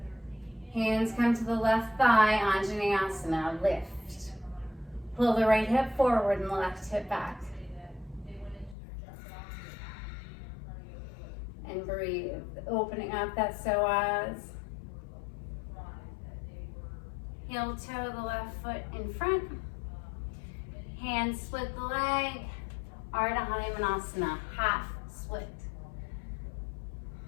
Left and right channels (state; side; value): drops out; right; at 8.8 s